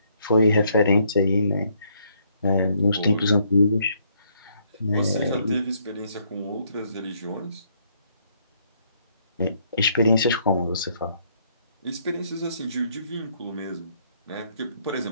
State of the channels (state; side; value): inverted; both; correlation -0.70